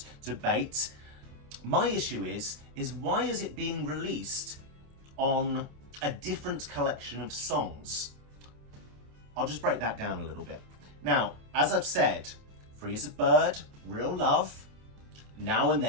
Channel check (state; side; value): late; left; 28 ms